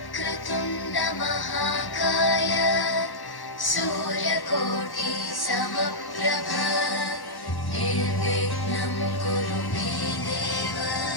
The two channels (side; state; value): right; late; 1.1 ms